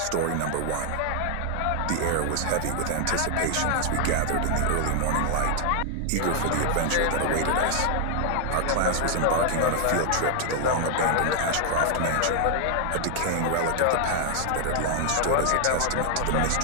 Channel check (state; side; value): different; both; correlation 0.00